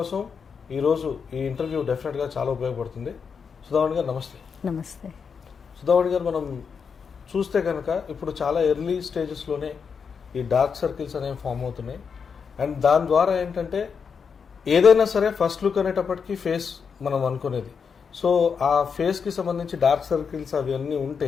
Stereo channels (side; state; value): right; quieter; 6.1 dB